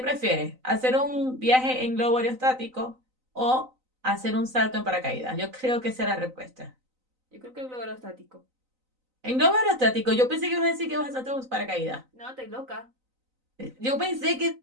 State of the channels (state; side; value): late; left; 3.9 ms